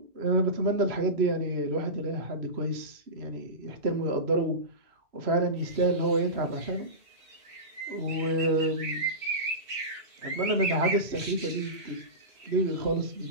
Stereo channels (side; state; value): left; late; 2.6 ms